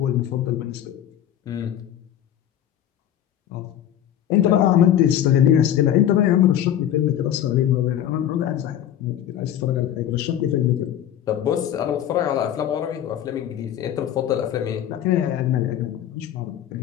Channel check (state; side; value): quieter; right; 10.9 dB